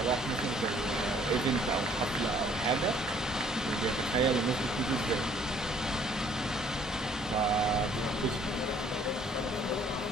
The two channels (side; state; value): both; normal; correlation 0.60